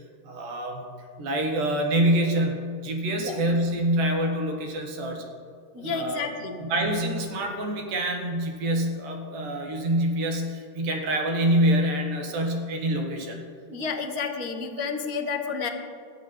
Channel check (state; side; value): late; left; 14 ms